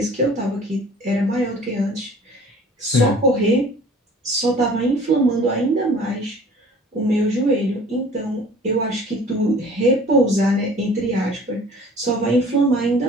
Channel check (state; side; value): normal; both; correlation 0.48